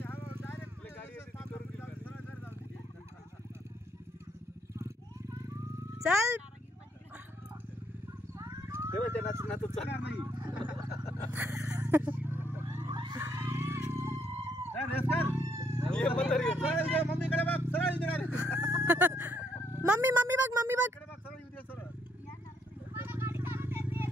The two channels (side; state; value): both; normal; correlation 0.72